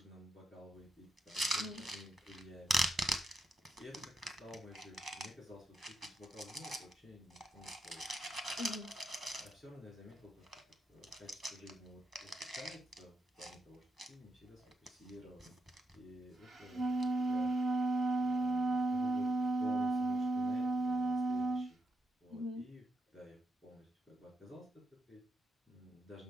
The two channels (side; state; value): both; normal; correlation 0.82